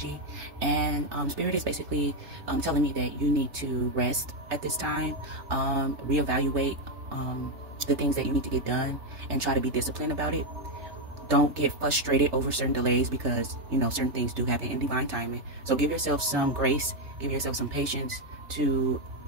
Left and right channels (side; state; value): left; late; 3.3 ms